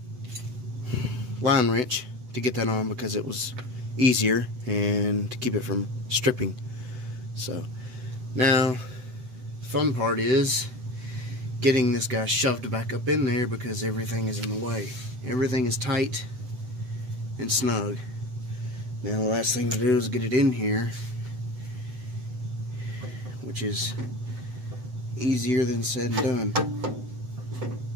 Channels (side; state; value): left; late; 7.9 ms